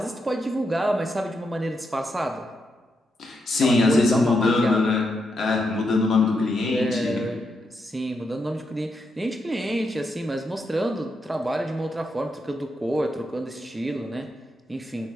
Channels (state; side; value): normal; both; correlation 0.82